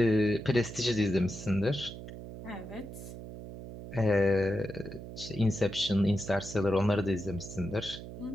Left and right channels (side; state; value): right; noise; hum, 11 dB below the sound